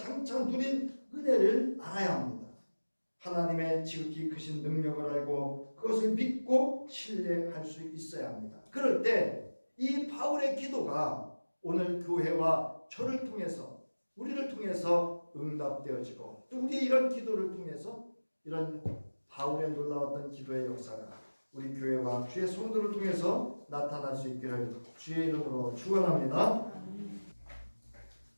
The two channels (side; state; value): both; inverted; correlation -1.00